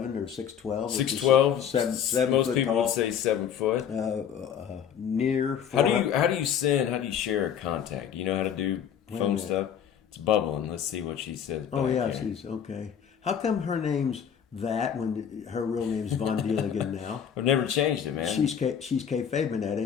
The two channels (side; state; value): right; quieter; 8.5 dB